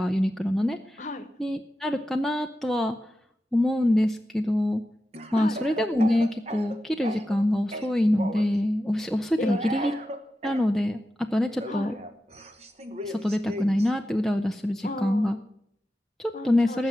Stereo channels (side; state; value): both; normal; correlation 0.91